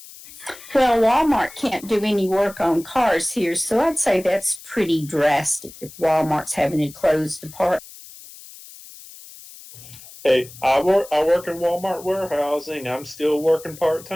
Well, Walmart can't do any work on cars here, so I'd say that's pretty drastic if Walmart's having to close department. Hey, I work in Walmart warehousing. I'm still working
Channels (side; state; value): left; noise; hiss, 18 dB below the sound